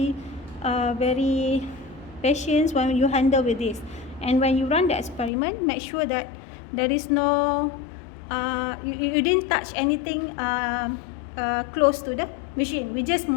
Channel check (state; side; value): drops out; right; at 5.3 s